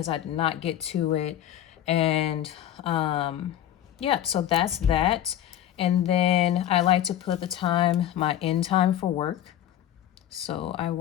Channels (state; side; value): quieter; right; 11.5 dB